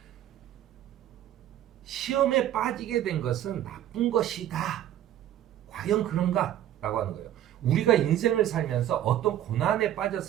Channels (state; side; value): quieter; left; 11.9 dB